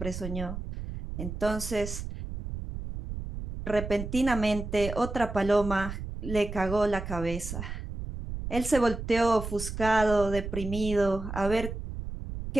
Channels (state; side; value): noise; right; rumble, 7 dB below the sound